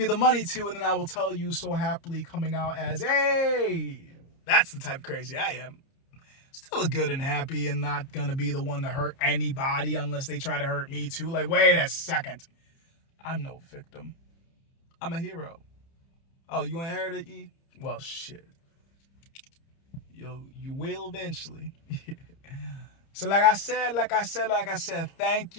the money to, and then I will tell you so happily coming out as, hey, that's the type of crazy I am. Still good and happy and not gonna be the one to hurt anybody unless they try to hurt me too. Like, wait a second. I'm no victim. I'm a hero. Oh, you ain't heard of E? Well, shit. You will eventually. So like I said, thank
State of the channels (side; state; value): right; late; 30 ms